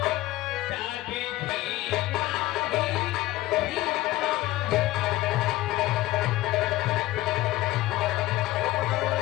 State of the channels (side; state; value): right; quieter; 16.8 dB